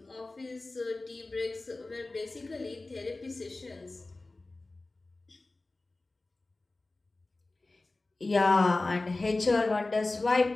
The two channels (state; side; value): quieter; right; 3.1 dB